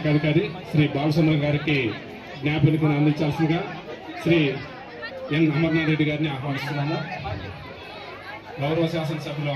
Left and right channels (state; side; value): identical; both; correlation 1.00